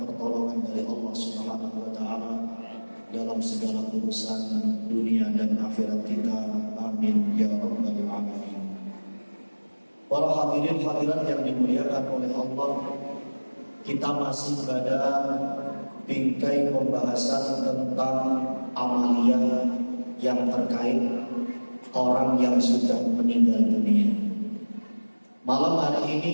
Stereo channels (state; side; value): inverted; both; correlation -1.00